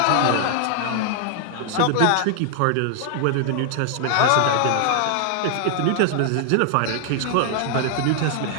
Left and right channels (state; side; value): different; both; correlation 0.00